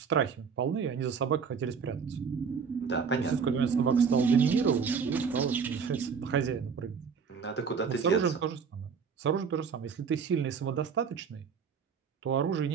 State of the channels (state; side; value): quieter; left; 6.2 dB